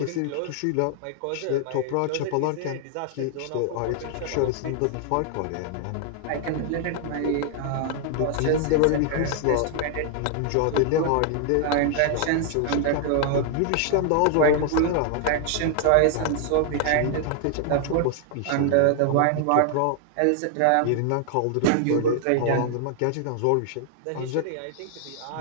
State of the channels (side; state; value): both; different; correlation 0.00